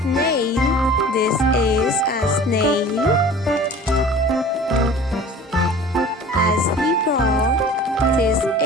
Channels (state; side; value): normal; both; correlation 0.43